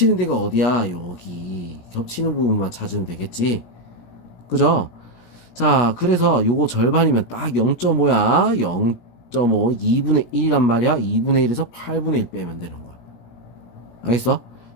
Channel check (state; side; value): late; right; 17 ms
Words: 데가 어디야? 여기. 겹치는 부분만 찾으면 되겠지. 그죠? 자, 그래서 요거 절반이면 딱 0.5야. 0.5, 2분의 1이란 말이야. 2분의 1에서 8분의 1 빼면 되는 거야. 알겠어?